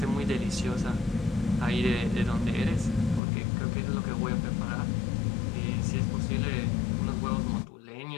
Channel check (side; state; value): right; drops out; at 3.2 s